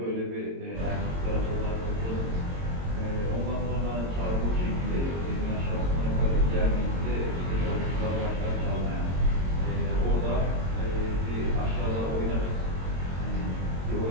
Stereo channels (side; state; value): left; late; 22 ms